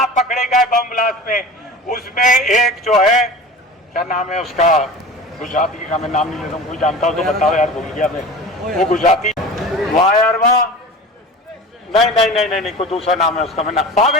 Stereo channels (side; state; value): both; normal; correlation 0.35